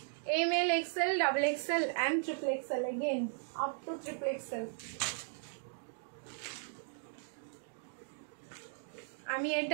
M L, XL, double XL and triple XL, again up to triple XL. আমি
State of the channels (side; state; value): left; silent; digital silence